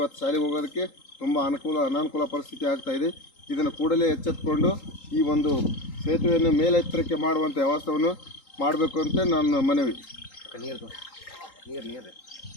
ಶಾಲೆಗೆ ಹೋಗೋದಕ್ಕೆ ತುಂಬ ಅನಾನುಕೂಲ ಪರಿಸ್ಥಿತಿ ಆಗ್ತಾಯಿದೆ. ಇದನ್ನು ಕೂಡಲೇ ಎಚ್ಚೆತ್ತುಕೊಂಡು ಈ ಒಂದು ಸೇತುವೆಯನ್ನು ಮೇಲೆತ್ತರಕ್ಕೆ ಮಾಡುವಂಥ ವ್ಯವಸ್ಥೆಯನ್ನು ಮಾಡಬೇಕು ಅಂತ ನನ್ನ ಮನವಿ.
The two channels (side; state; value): right; late; 3.8 ms